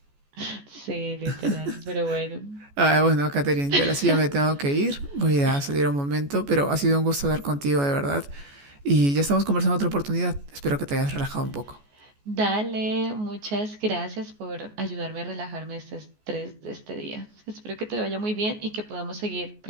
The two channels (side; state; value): left; late; 14 ms